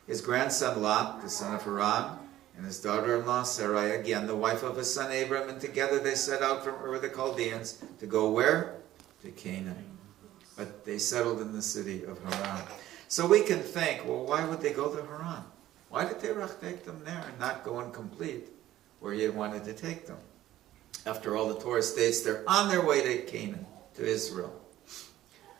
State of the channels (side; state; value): left; quieter; 14.0 dB